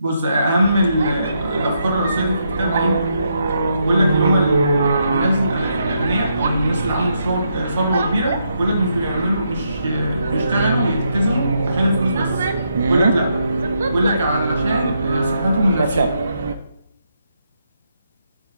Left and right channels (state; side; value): inverted; both; correlation -0.79